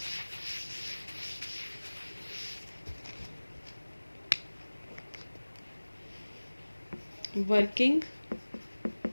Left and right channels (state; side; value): inverted; both; correlation -1.00